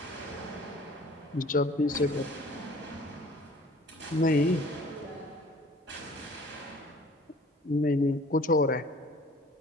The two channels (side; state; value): both; normal; correlation 0.50